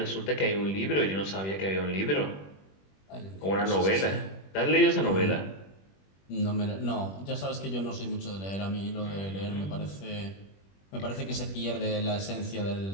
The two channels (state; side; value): late; right; 21 ms